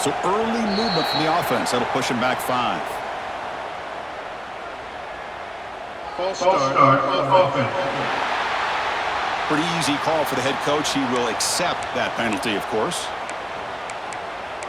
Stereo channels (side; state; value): both; identical; correlation 1.00